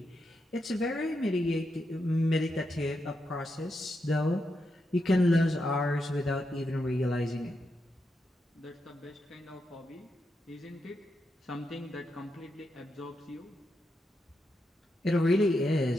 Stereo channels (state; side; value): normal; both; correlation 0.85